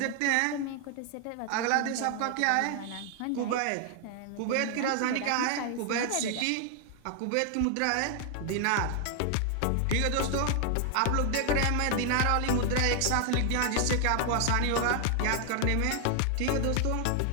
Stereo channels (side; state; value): both; different; correlation 0.00